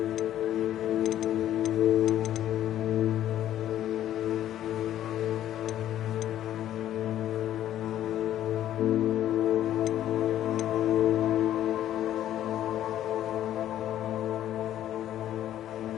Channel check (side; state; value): right; quieter; 12.0 dB